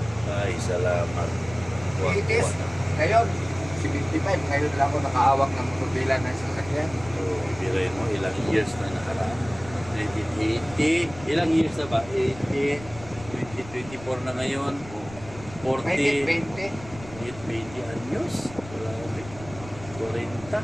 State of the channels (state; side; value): noise; left; rumble, 16 dB below the sound